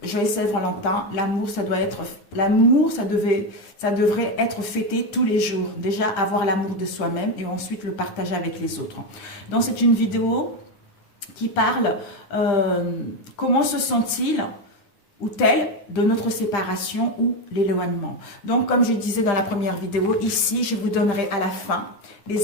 joyeux Saint-Valentin, l'amour, ça devrait être fêté tous les jours. Déjà, avoir l'amour de soi-même et ensuite le partager avec les autres. Donc, c'est une vidéo qui parle comment se sent-il ou tel de notre séparation ou l'éloignement. Donc, comme je disais dans la première vidéo, ici, je vous donnerai à la fin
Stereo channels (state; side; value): late; right; 10 ms